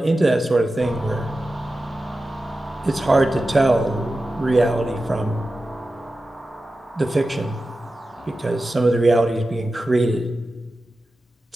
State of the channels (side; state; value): both; normal; correlation 0.93